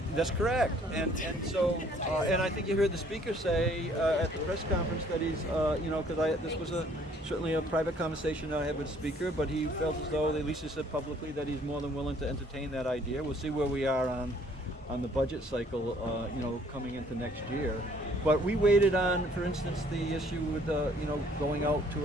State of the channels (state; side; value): normal; both; correlation 0.60